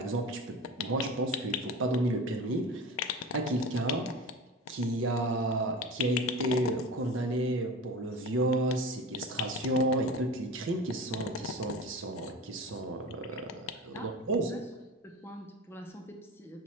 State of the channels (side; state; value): both; normal; correlation 0.32